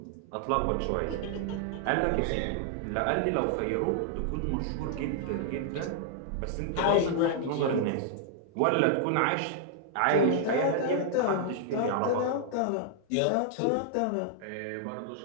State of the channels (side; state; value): both; different; correlation -0.01